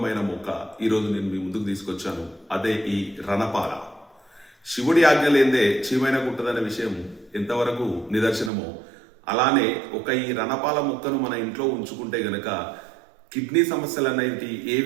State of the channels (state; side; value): drops out; left; at 8.5 s